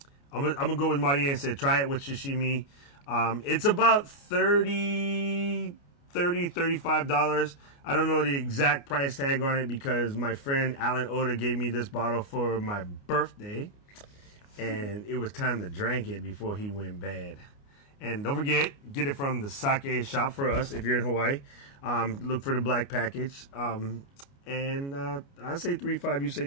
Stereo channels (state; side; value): late; right; 29 ms